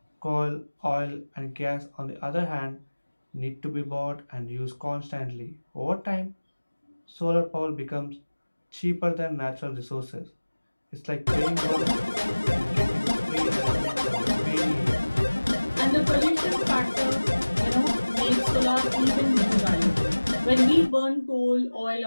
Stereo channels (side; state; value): both; inverted; correlation -1.00